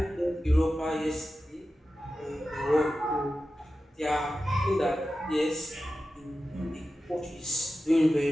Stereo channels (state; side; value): normal; both; correlation 0.93